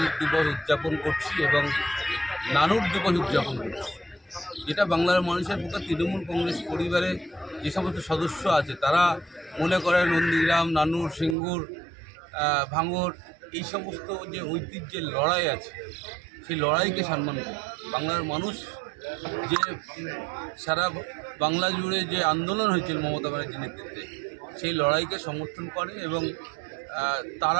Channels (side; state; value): left; drops out; at 11.4 s